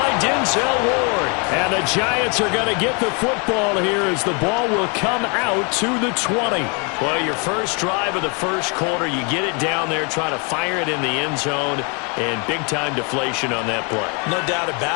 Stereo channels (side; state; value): right; quieter; 34.0 dB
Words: Denzel Ward. And the Giants are going to get the football here as the ball will come out to the 20. Well, your first drive of the first quarter, you get it down there, try to fire it in the end zone, and big-time deflation on that play. No doubt